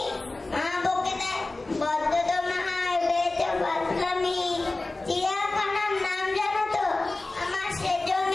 মা বকে দেয় বদ্ধ তোমার বেঁচে বাঁচলামি। চিড়িয়াখানার নাম জানো তো আমার সেজো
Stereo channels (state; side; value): quieter; right; 3.1 dB